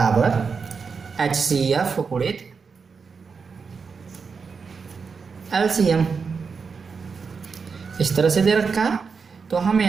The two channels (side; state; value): left; quieter; 5.4 dB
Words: HCF गुणित LCM, इस तरह से दे रखा है। तो हम